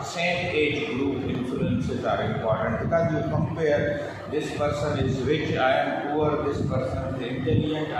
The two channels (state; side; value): identical; both; correlation 1.00